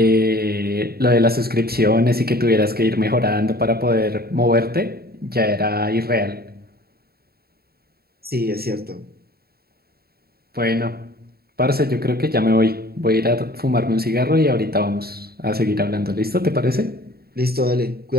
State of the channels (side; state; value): left; late; 0.45 ms